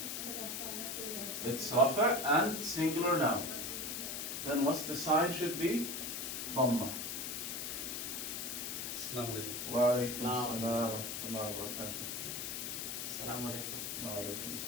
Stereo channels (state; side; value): noise; left; hiss, 4 dB below the sound